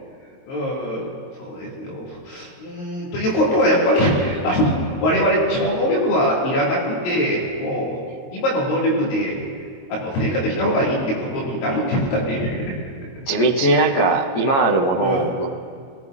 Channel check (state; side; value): late; right; 22 ms